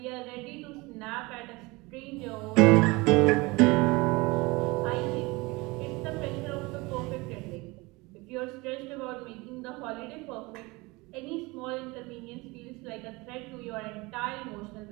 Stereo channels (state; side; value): quieter; left; 24.0 dB